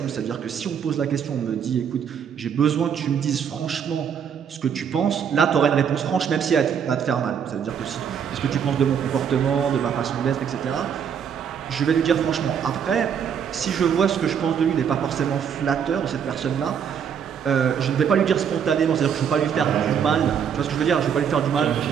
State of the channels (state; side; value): quieter; left; 7.7 dB